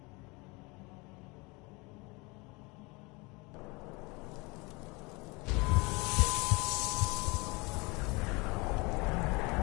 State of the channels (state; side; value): quieter; right; 26.5 dB